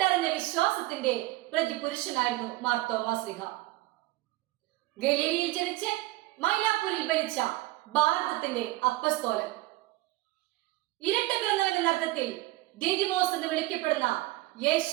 വിശ്വാസത്തിന്റെ പ്രതിപുരുഷനായിരുന്നു മാർ തോമസ് ലീഹ. ഗലീലയിൽ ജനിച്ച് മൈലാപ്പൂരിൽ ഭരിച്ച ഭാരതത്തിന്റെ അപ്പസ്തോലൻ. ഇരട്ട പിറന്നവന്റെ അർത്ഥത്തിൽ ദീദിമോസ് എന്ന് വിളിക്കപ്പെടുന്ന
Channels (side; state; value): left; quieter; 18.9 dB